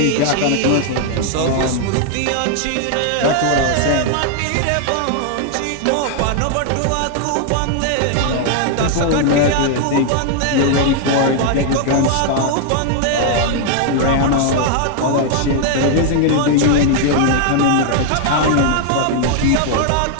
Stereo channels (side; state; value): both; different; correlation 0.00